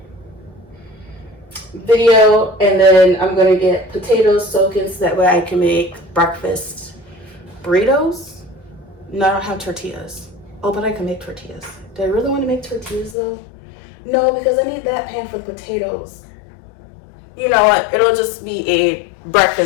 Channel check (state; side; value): drops out; right; at 13.2 s